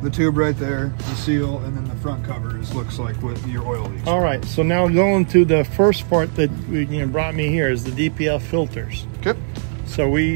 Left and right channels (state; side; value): silent; left; digital silence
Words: the tube right there, the seal, and then the front cover looks like what your oil leaks. All right, so now going to the first part that brought me here is the DPF filters. Okay. So